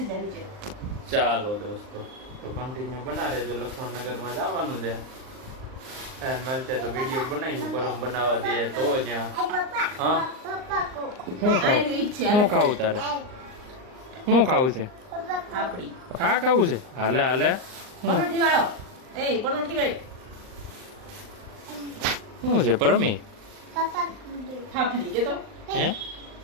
જા નીચે. ચાલો દોસ્તો, તો કન્ટિન્યુ બના રહેજો. લક્ષ્મણનગરમાં જવાનું છે, મળશે તો વિડીયો બનાવીશું. પરમ બનાવવા દે તો ત્યાં. હા, શું ખાવું તારે? શું ખાવું છે? પાપડી હા ખાવું છે. હાલે હાલે. પરોઠી વાળો. એ પરોઠી વાળી શું છે પરમી? ખાપલી કેતો હે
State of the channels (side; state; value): left; late; 39 ms